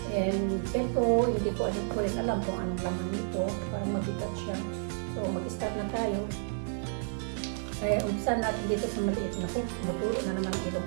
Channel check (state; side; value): silent; left; digital silence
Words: And ito, hindi ko rin alam kung anong laman nito. Parang mabigat siya. So, mag-start na tayo. Kaya, umpisan natin dito sa maliit na ko. Matulo na naman ang ilong